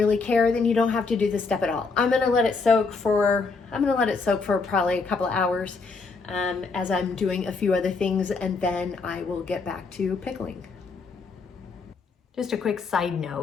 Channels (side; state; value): right; quieter; 4.4 dB